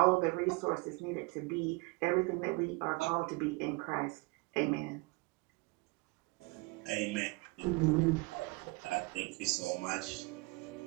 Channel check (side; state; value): left; quieter; 26.1 dB